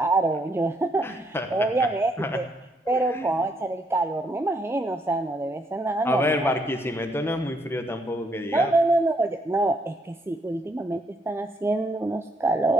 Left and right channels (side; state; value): both; normal; correlation 0.72